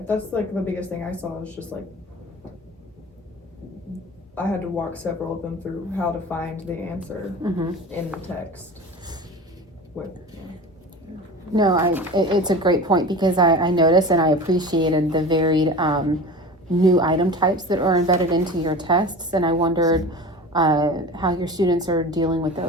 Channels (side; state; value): both; normal; correlation 0.34